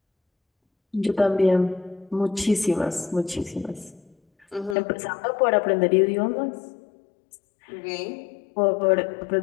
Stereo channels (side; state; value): right; drops out; at 4.8 s